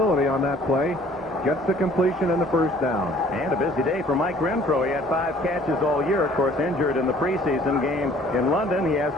on that play. Gets the completion and the first down. And a busy day for Mike Renfro. He had 5 catches all year, of course, injured in the preseason game in London. He has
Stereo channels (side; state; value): both; normal; correlation 0.55